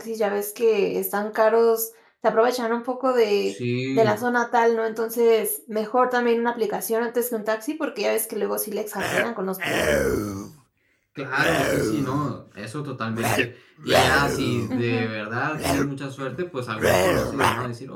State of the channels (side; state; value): both; identical; correlation 1.00